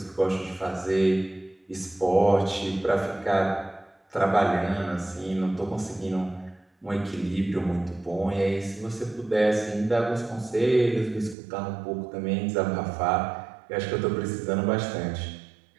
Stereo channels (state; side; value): drops out; left; at 11.4 s